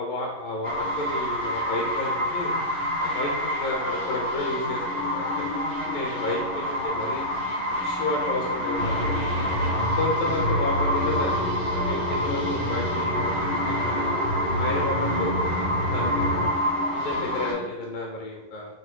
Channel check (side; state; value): right; late; 11 ms